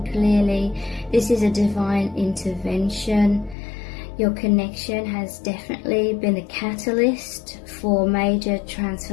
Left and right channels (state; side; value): drops out; right; at 3.6 s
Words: clearly. This is a divine intervention. Your connection has definitely been a catalyst for major